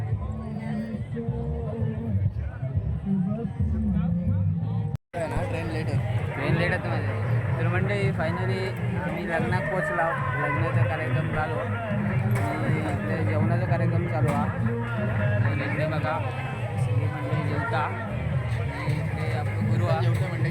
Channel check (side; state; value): both; identical; correlation 1.00